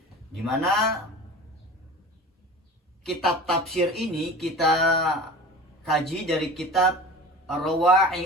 di mana kitab tafsir ini kita kaji dari kitab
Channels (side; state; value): both; normal; correlation 0.36